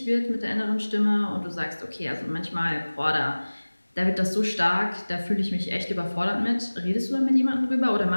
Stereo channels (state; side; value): inverted; both; correlation -1.00